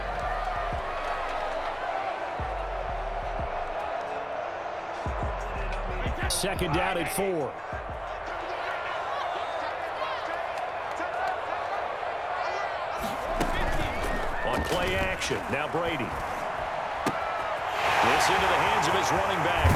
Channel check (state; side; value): identical; both; correlation 1.00